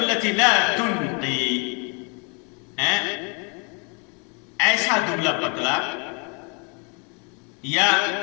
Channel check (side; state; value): right; quieter; 34.9 dB